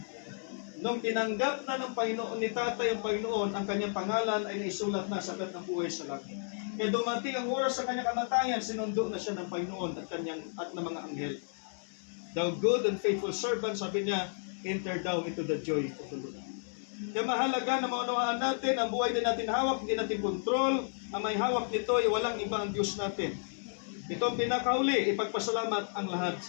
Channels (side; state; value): right; silent; digital silence